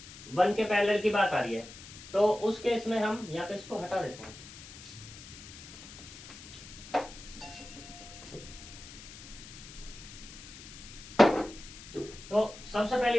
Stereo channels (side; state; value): left; noise; hiss, 15 dB below the sound